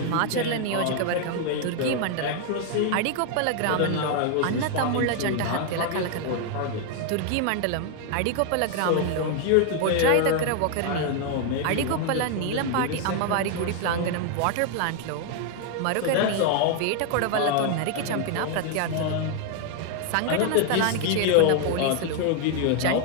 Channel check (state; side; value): different; both; correlation 0.00